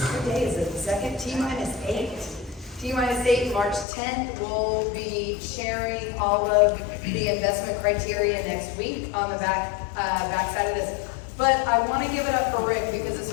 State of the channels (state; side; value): drops out; right; at 3.9 s